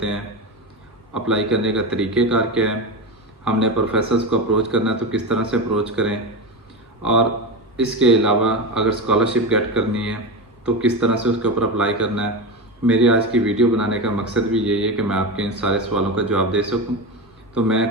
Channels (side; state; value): both; normal; correlation 0.20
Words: हैं, अप्लाई करने का तरीक़ेकार क्या है, हमने प्रोफेसर्स को अप्रोच करना है तो किस तरह से अप्रोच करें, और इसके अलावा अगर स्कॉलरशिप गेट करनी है तो किस तरह से उसके ऊपर अप्लाई करना है। मेरी आज की वीडियो बनाने का मकसद भी यही है कि मैं आपके इन सारे सवालों का जवाब दे सकूँ। तो मैं